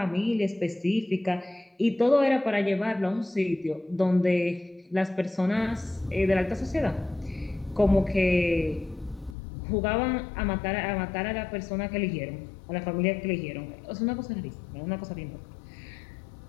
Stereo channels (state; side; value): drops out; right; at 9.3 s